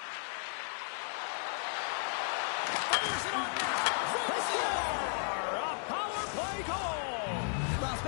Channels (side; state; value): right; silent; 55 dB below the other